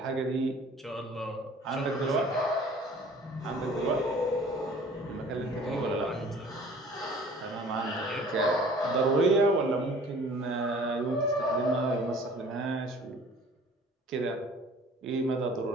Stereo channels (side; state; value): both; normal; correlation 0.50